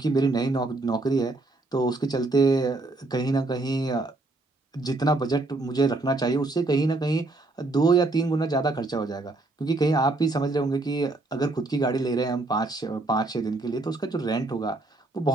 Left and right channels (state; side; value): quieter; left; 3.1 dB